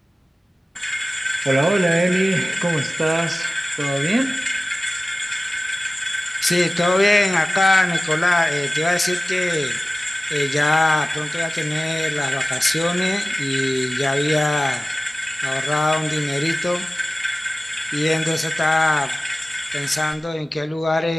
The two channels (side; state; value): both; normal; correlation 0.97